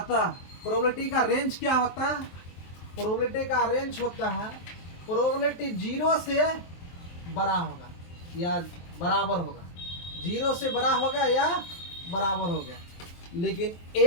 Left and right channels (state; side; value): late; right; 23 ms